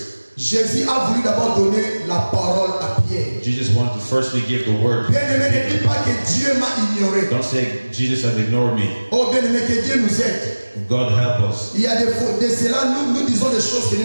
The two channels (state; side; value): inverted; both; correlation -1.00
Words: Jésus a voulu d'abord donner la parole à Pierre. Jesus wanted to firstly give the word. Bien aimé, ne dis pas que Dieu m'a ignoré. Don't say Jesus has ignored me. Oh bien aimé, que Dieu nous aide. God help us. Il y a de cela, nous disons des choses que